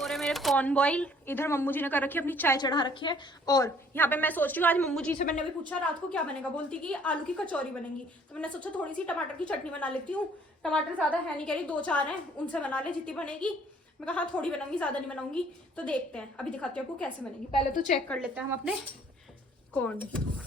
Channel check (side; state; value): both; normal; correlation 0.59